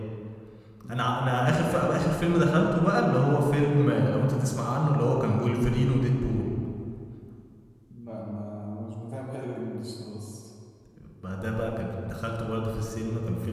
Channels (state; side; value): identical; both; correlation 1.00